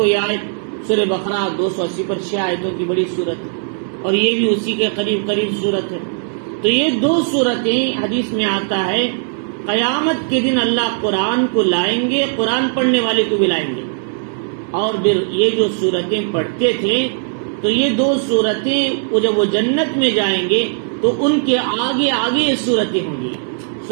یہ آیت سورہ بقرہ 280 پر 6 آیتوں کی بڑی صورت ہے، اور یہ بھی اسی کے قریب صورت ہے۔ تو یہ 2 صورتیں حدیث میں آتا ہے قیامت کے دن اللہ قرآن کو لائیں گے، قرآن پڑھنے والے کو بھی لائیں گے، اور پھر یہ جو صورتیں پڑھتے تھے تو یہ 2 صورتیں جب وہ جنت میں جائیں گے تو ان کے آگے آگے یہ صورتیں ہوں گی،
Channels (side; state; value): left; silent; 67 dB below the other